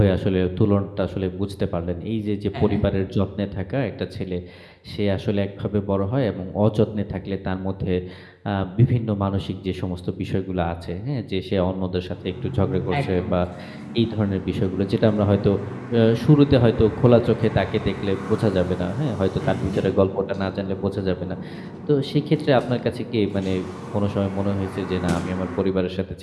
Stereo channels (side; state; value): both; identical; correlation 1.00